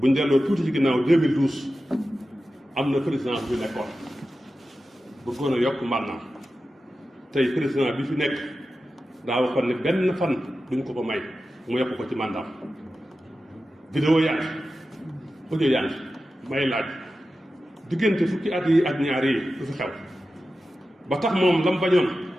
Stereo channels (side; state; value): both; normal; correlation 0.93